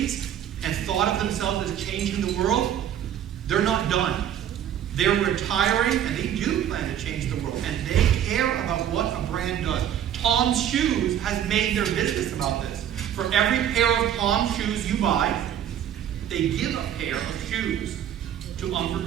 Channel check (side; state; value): left; quieter; 10.1 dB